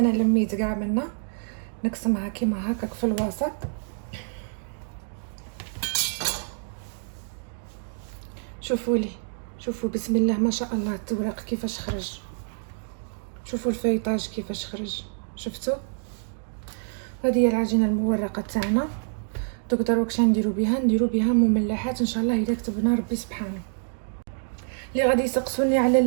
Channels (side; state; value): left; silent; digital silence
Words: لميت كاع منا، نقسمها كيما هكاك في الوسط. شوفوا لي، شوفوا بسم الله ما شاء الله التورق كيفاش خرج. شوفوا الفيطاج كيفاش خرج، شفتوا. هذه هي العجينه المورقه تاعنا. دوك دروك شنو نديرو بها، نديرو بها مملحات ان شاء الله اذا كتبنا ربي سبحانه. اللي غادي يسقسوني